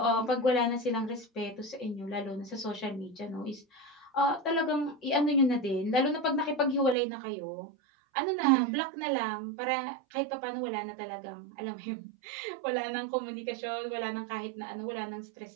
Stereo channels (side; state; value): left; drops out; at 7.0 s